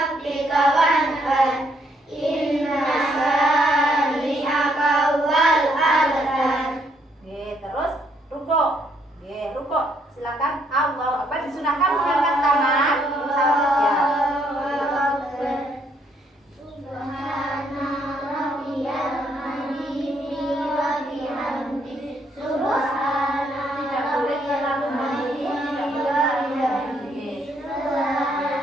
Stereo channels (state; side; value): normal; both; correlation 0.71